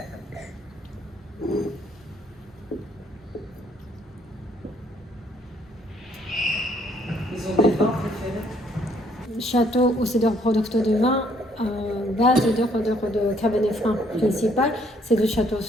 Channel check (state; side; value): normal; both; correlation 0.66